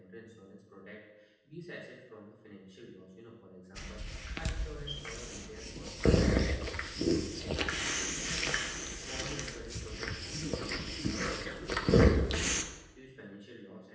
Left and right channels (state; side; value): identical; both; correlation 1.00